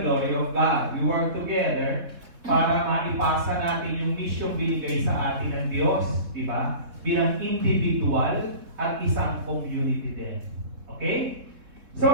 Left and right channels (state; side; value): late; left; 3.7 ms